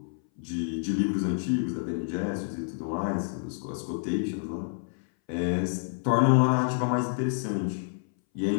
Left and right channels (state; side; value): silent; right; 59 dB below the other